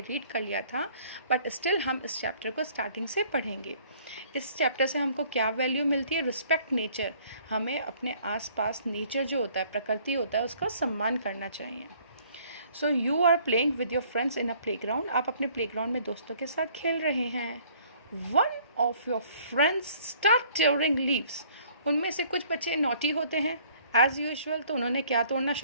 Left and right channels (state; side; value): inverted; both; correlation -0.59